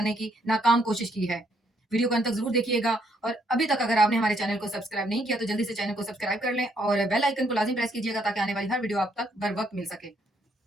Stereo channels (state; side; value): normal; both; correlation 0.71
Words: की नाकाम कोशिश की है। वीडियो को अंत तक जरूर देखिएगा और अभी तक अगर आपने हमारे चैनल को सब्सक्राइब नहीं किया तो जल्दी से चैनल को सब्सक्राइब कर लें और बेल आइकन को लाजिम प्रेस कीजिएगा ताकि आने वाली हर वीडियो आप तक बर वक्त मिल सके।